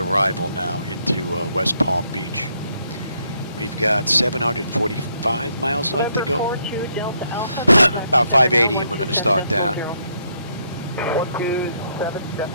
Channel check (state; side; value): inverted; both; correlation -0.74